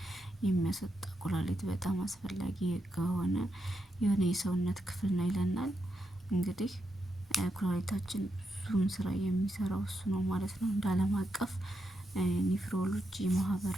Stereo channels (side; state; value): both; normal; correlation 0.84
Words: የሚያስወጣ ኩላሊት በጣም አስፈላጊ ከሆነ የሆነ የሰውነት ክፍል ነው ይለናል። እንግዲህ ኩላሊታችን ብዙም ስራ የሚሰራው እሱ ነው ማለት ነው። እንደ አለም አቀፍ ኒፍሮሎጂ ማህበር